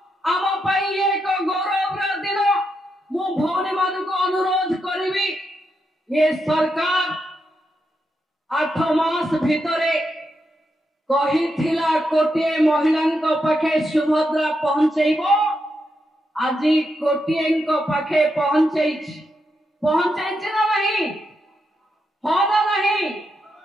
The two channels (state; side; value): normal; both; correlation 0.83